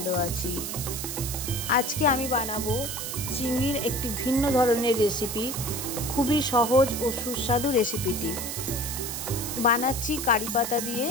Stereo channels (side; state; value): right; noise; hiss, 5 dB below the sound